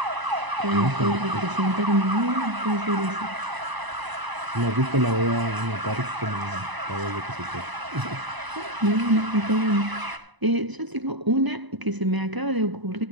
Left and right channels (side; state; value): left; late; 1.0 ms